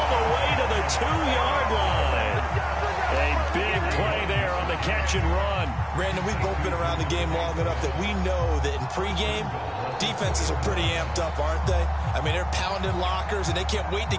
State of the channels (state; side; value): identical; both; correlation 1.00